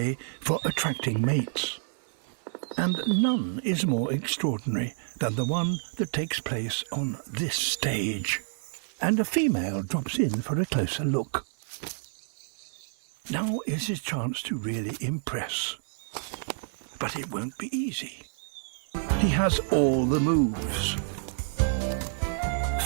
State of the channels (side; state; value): left; silent; 59 dB below the other